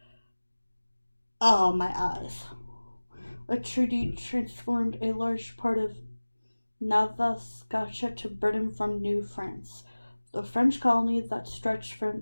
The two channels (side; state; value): both; inverted; correlation -1.00